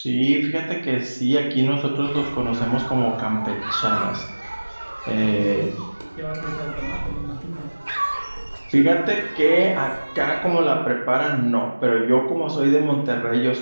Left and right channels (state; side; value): inverted; both; correlation -1.00